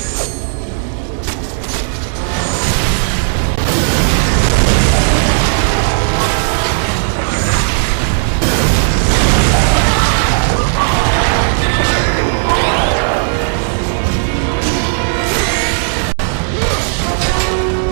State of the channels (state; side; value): silent; left; digital silence